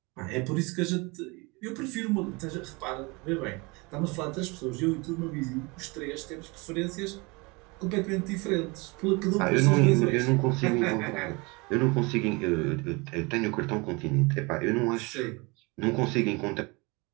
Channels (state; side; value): quieter; left; 27.1 dB